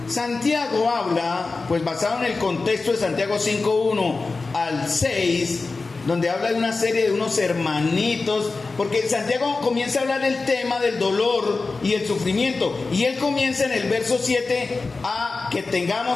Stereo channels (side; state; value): right; quieter; 3.9 dB